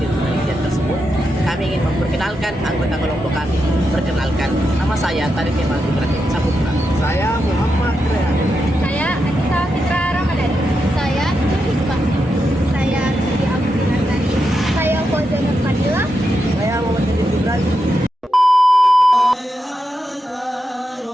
penelitian tersebut, kami ingin memperkenalkan anggota kelompok kami. Perkenalkan, nama saya Tarik Kemal Ibrahim Saputra. Saya Muhammad Rehan. Saya Anissa Fitra Ramadan. Saya Hikmah. Saya Siti Abdi Nasari. Saya Fauzan Fadila. Saya Muhammad Ibrahim.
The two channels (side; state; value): both; normal; correlation 0.86